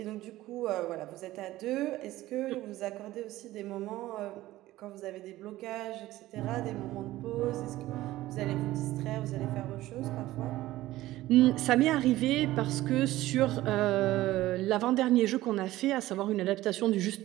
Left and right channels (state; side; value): quieter; left; 16.2 dB